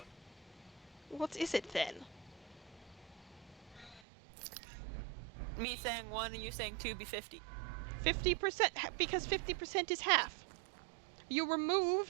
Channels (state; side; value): drops out; left; at 4.0 s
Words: one. What is it then? Me saying 1 and you saying 2 be 50. 50%, because 50% is half. You